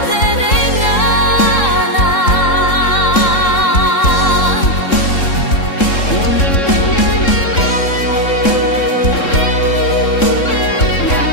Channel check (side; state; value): right; late; 3.7 ms